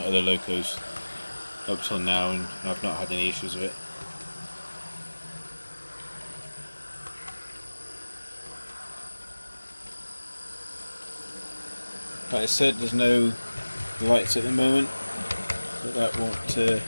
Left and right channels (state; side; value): inverted; both; correlation -1.00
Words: other locos up till now, and I've not had any issues with it. Like I said, there's no lights at the moment, but that